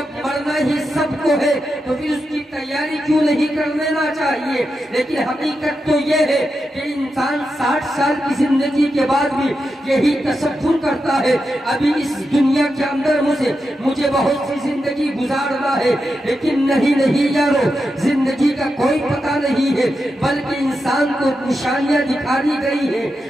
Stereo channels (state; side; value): normal; both; correlation 0.88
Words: مرنا ہی سب کو ہے تو پھر اس کی تیاری کیوں نہیں کر لینا چاہیے؟ لیکن حقیقت تو یہ ہے کہ انسان 60 سال کی زندگی کے بعد بھی یہی تصور کرتا ہے ابھی اس دنیا کے اندر مجھے بہت سی زندگی گزارنا ہے، لیکن نہیں یارو، زندگی کا کوئی پتہ نہیں ہے، بلکہ انسان کو نشانیاں دکھا دی گئی ہے۔